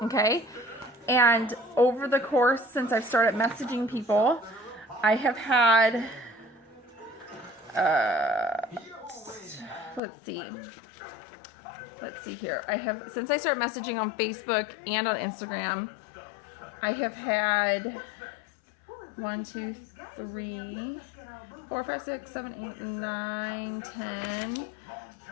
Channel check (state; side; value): drops out; right; at 10.0 s